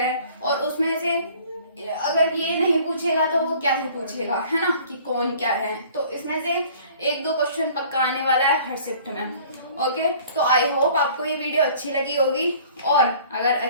और उसमें से अगर ये नहीं पूछेगा तो वो क्या ही पूछेगा, है ना, कि कौन क्या है। तो इसमें से 1-2 क्वेश्चन पक्का आने वाला है हर शिफ्ट में। ओके, तो आई होप आपको ये वीडियो अच्छी लगी होगी, और अगर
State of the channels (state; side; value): inverted; both; correlation -0.52